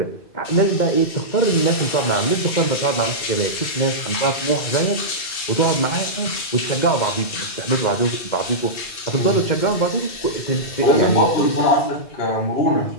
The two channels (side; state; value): right; late; 2.7 ms